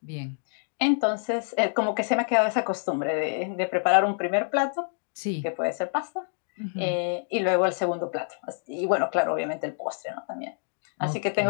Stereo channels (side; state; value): right; silent; digital silence